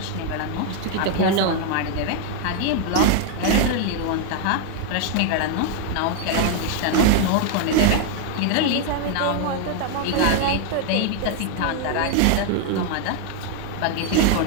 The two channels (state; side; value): different; both; correlation 0.00